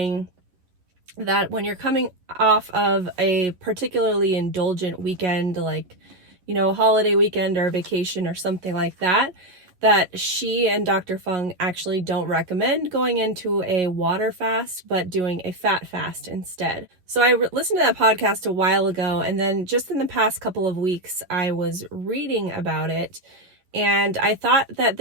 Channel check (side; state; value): left; late; 11 ms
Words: that when you're coming off of a particularly indulgent weekend, like, a holiday weekend or a vacation or something like that, that she and Dr. Fung actually don't recommend going into a water fast, but doing a fat fast instead. So I listened to that podcast a while ago, and then just in the past couple of weeks, I was reading about it, and I thought that